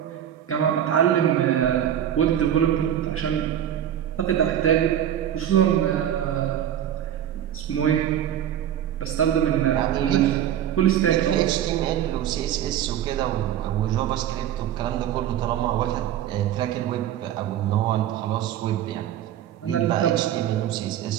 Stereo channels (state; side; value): quieter; left; 10.6 dB